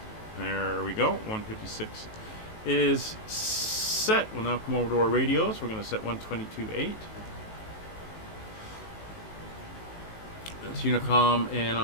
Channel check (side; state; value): right; late; 19 ms